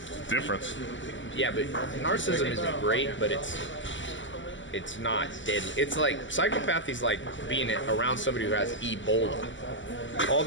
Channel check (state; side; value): late; right; 0.55 ms